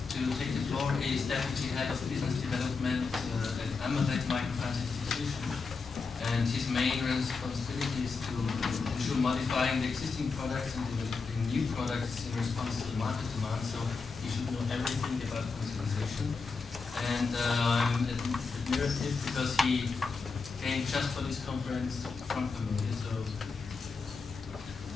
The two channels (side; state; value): right; quieter; 4.6 dB